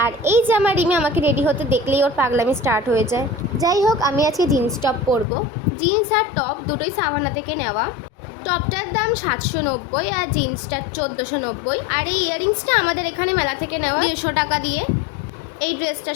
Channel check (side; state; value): right; drops out; at 5.2 s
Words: আর এই যে আমার রিমি আমাকে রেডি হতে দেখলেই ওর পাগলামি স্টার্ট হয়ে যায়। যাই হোক, আমি আজকে জিন্স টপ পরবো। জিন্স আর টপ দুটোই সাভানা থেকে নেওয়া। টপটার দাম 790 আর জিন্সটার 1490। আর এই ইয়াররিংসটা আমাদের এখানে মেলা থেকে নেওয়া 150 টাকা দিয়ে। এই